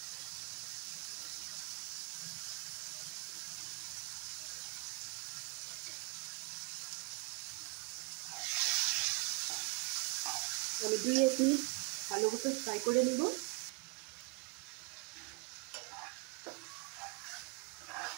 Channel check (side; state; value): left; quieter; 31.2 dB